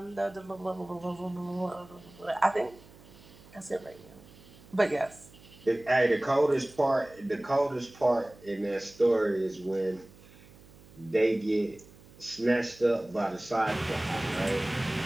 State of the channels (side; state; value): right; noise; hum, 23 dB below the sound